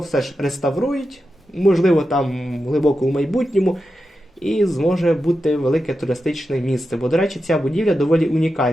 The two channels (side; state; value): both; normal; correlation 0.90